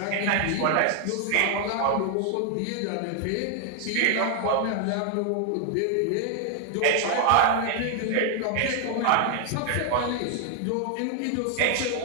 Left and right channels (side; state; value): both; different; correlation 0.00